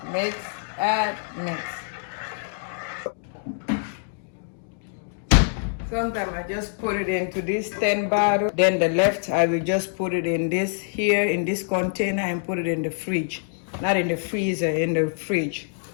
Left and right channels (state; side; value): silent; right; digital silence